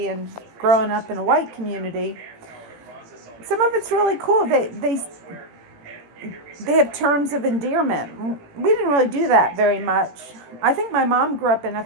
and growing up in a white community. Some of it's really cool. They have terms of endearment. We didn't really do that very much. I think my mom grew up in a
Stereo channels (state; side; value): late; left; 18 ms